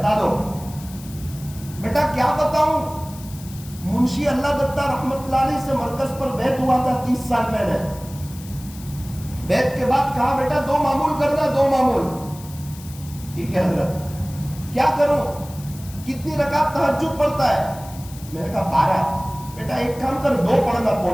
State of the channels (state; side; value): noise; left; hiss, 18 dB below the sound